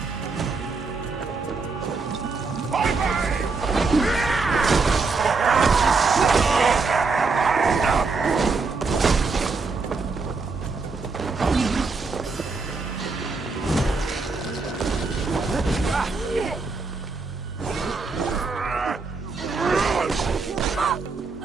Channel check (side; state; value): left; quieter; 4.2 dB